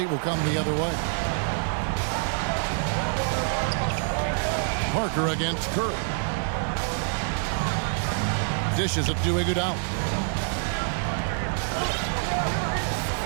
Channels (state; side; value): silent; left; 61 dB below the other